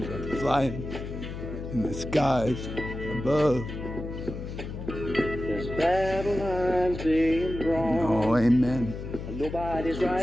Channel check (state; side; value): noise; left; hum, 8 dB below the sound